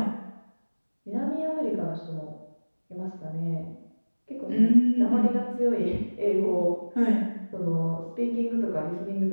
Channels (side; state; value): both; inverted; correlation -1.00